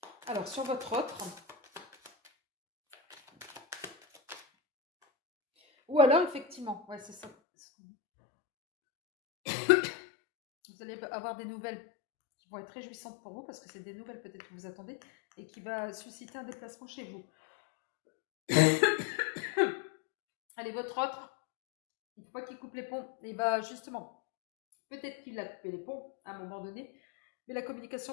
Alors, sur votre autre, ou alors, effectivement, ouais, c'est ça. Vous allez avoir des nouvelles qui vont être réjouissantes pour vous, parce que c'est des nouvelles peut-être que vous attendez, et qui va susciter un déplacement chez vous. Allez, votre autre, il ne faut pas qu'il coupe les ponts. Et bah justement, peut-être qu'il a coupé les ponts à un moment donné, mais la communication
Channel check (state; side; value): drops out; right; at 7.3 s